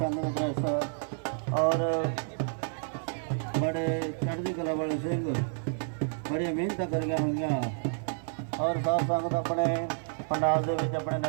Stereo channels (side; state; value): left; silent; 58 dB below the other